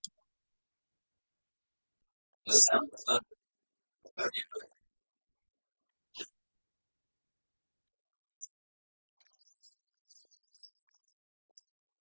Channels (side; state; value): both; inverted; correlation -1.00